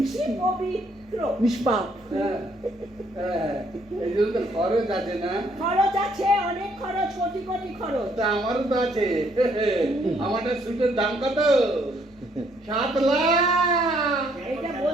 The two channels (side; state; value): both; normal; correlation 0.68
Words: পবিত্র, নিষ্পাপ। হ্যাঁ, হ্যাঁ, এই জন্য তো খরচ আছে না? খরচ আছে, অনেক খরচ, কোটি কোটি খরচ। তা আমারও তো আছে। আমারটা সুটের দাম কত? 7 লাখ। এটা